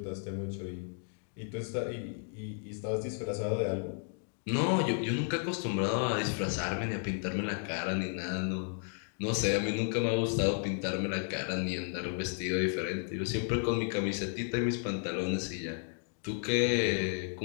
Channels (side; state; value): right; silent; 56 dB below the other